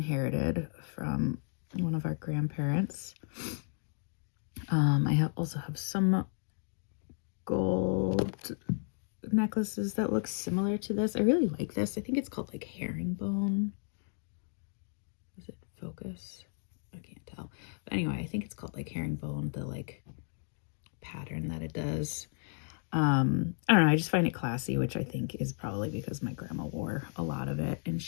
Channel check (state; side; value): silent; right; 55 dB below the other